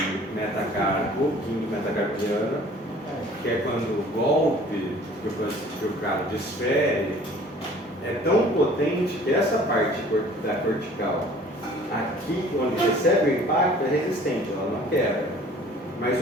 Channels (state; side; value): normal; both; correlation 0.50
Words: metacarpo, quinto metacarpiano, que é quando o golpe que o cara desfere é tão potente que essa parte da cortical, aqui onde recebe o impacto, é resistente, ela não quebra. Mas